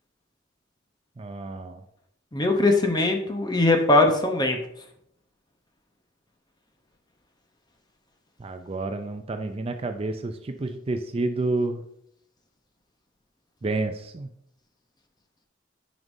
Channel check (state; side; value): normal; both; correlation 0.43